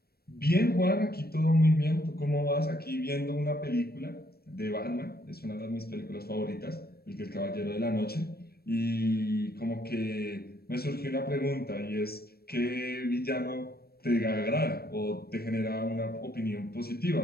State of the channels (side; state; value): right; late; 0.45 ms